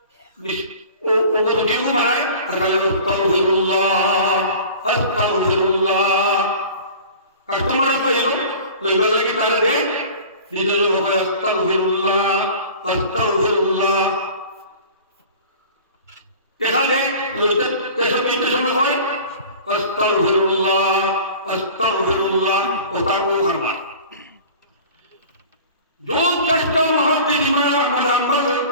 ও রুটিও বানায় আর খালি আস্তাগফিরুল্লাহ আস্তাগফিরুল্লাহ। কাস্টমার পাইল লইবার লাগি তাহলে দেখ নিজের লোক আস্তাগফিরুল্লাহ আস্তাগফিরুল্লাহ এখানে লইতে কেসব নিতে সময় হয় আস্তাগফিরুল্লাহ আস্তাগফিরুল্লাহ ও তারপর করবা। जो दस्त मुहद्दिस अहमद अहमद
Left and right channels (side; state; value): both; inverted; correlation -0.42